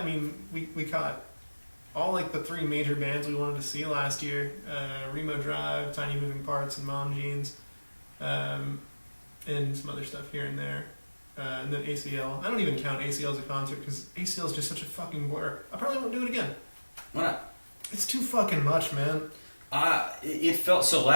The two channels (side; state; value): both; inverted; correlation -1.00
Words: mean, we caught all like the three major bands we wanted to see last year: Remo Drive, Tiny Moving Parts, and Mom Jeans, and some other stuff here and there. And then ACL. I don't even count ACL as a concert because ACL is just such a fucking blur. I probably won't do it again. Why not? It's too fucking much, man. It felt so